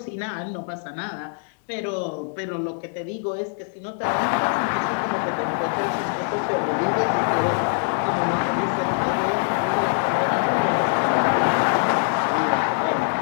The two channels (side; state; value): right; silent; 63 dB below the other